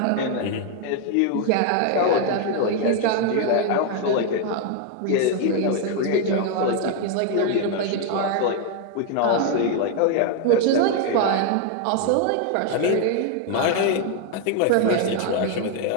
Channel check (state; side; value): different; both; correlation 0.01